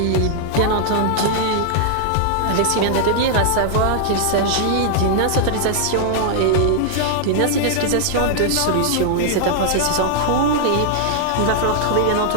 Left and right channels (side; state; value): both; different; correlation -0.01